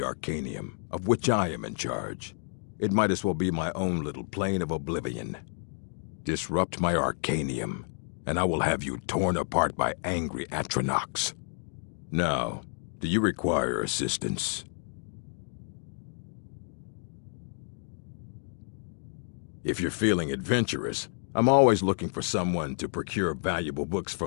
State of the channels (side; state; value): right; silent; digital silence